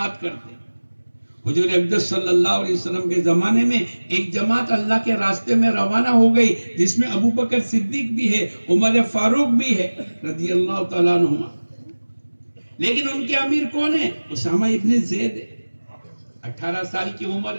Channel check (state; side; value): inverted; both; correlation -1.00